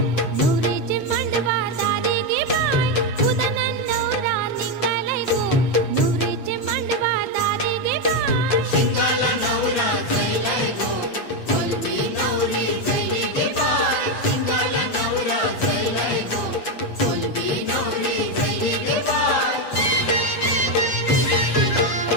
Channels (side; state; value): right; late; 8.2 ms